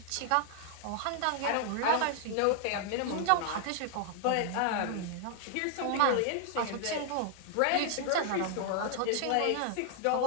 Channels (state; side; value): different; both; correlation 0.00